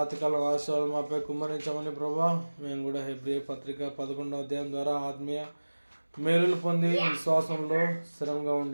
ఆశయాలు మాపై కుమ్మరించమని ప్రభా. మేము కూడా హెబ్రీ పత్రిక 11వ అధ్యాయం ద్వారా ఆత్మీయ మేలులు పొంది విశ్వాసంలో స్థిరంగా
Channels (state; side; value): inverted; both; correlation -1.00